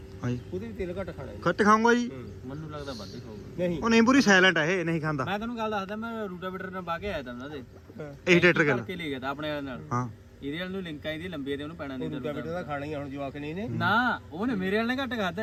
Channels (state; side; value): identical; both; correlation 1.00